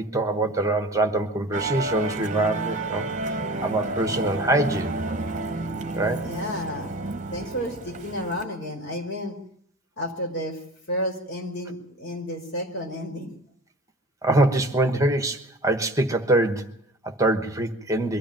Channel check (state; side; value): normal; both; correlation 0.39